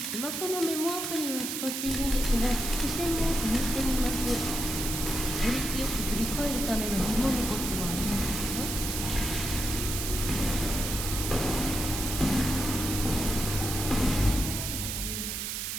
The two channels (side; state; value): right; noise; hiss, 3 dB below the sound